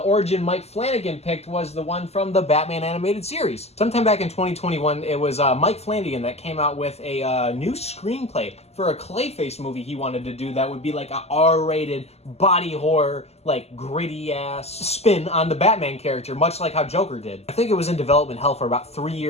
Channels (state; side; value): late; right; 0.30 ms